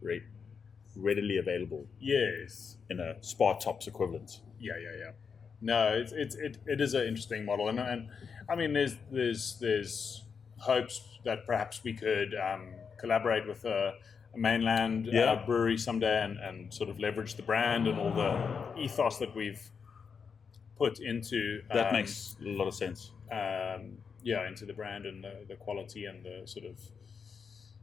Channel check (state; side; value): quieter; right; 6.0 dB